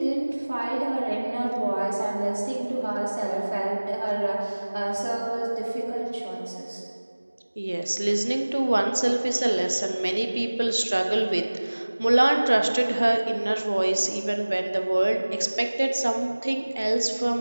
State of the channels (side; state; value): both; inverted; correlation -1.00